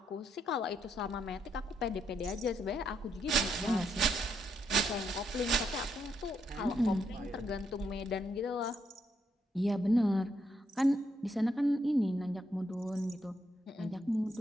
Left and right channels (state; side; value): normal; both; correlation 0.77